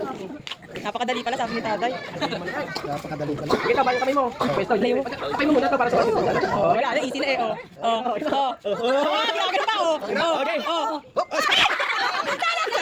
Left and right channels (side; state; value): both; identical; correlation 1.00